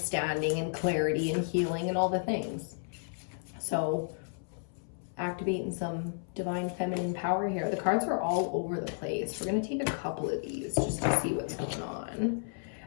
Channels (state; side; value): silent; right; 56 dB below the other